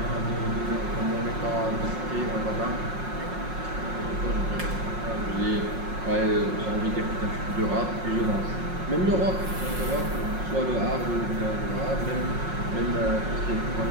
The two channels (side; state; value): left; late; 5.5 ms